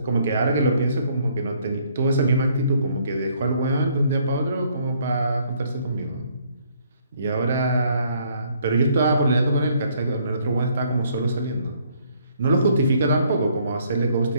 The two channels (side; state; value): both; inverted; correlation -0.66